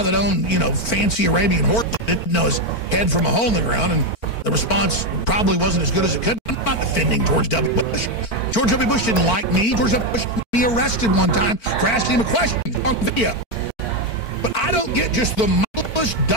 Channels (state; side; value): late; right; 4.5 ms